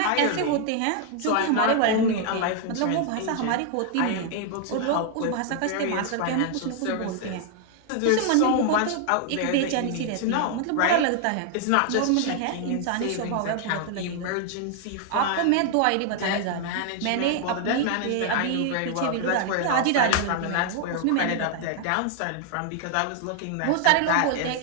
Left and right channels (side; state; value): both; different; correlation 0.00